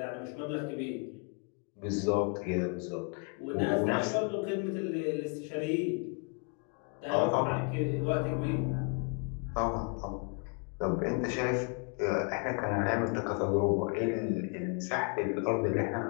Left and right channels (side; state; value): right; quieter; 35.1 dB